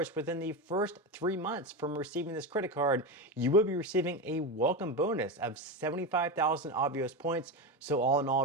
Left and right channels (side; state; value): both; normal; correlation 0.17